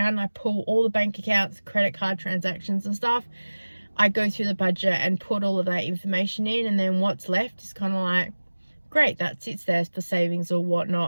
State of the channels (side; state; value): both; inverted; correlation -1.00